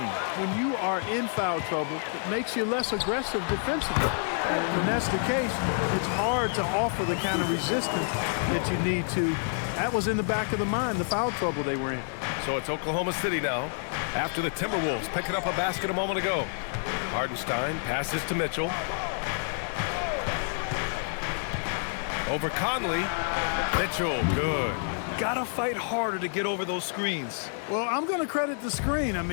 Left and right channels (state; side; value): silent; right; digital silence